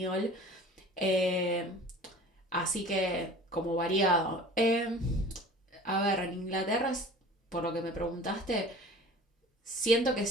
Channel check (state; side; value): normal; both; correlation 0.42